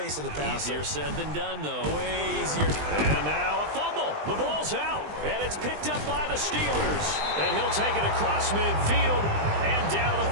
of the passer. Easier said than done, though. Way easier. And now a fumble. The ball's out. And it's picked up by the Steelers. And he'll take it across midfield and down to the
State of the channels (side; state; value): left; late; 20 ms